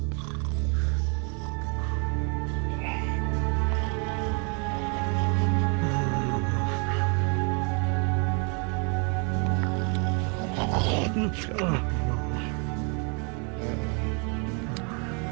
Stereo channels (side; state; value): left; quieter; 35.7 dB